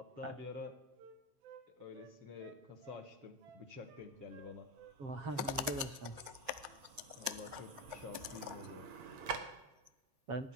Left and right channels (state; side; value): late; left; 7.1 ms